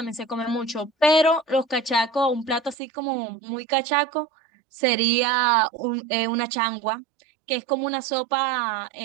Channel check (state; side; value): drops out; left; at 2.8 s